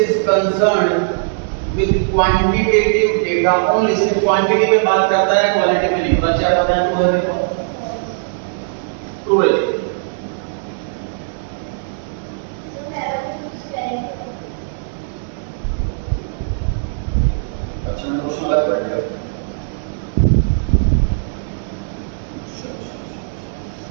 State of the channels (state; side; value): silent; left; 67 dB below the other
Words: concerned with quantitative data only. सिर्फ क्वांटिटी पे बात करता है, क्वालिटी पे नहीं। बच्चे आप बताएं ट्रू है देखो। ट्रू है। अच्छा मैं क्वेश्चन अलग कर दिया।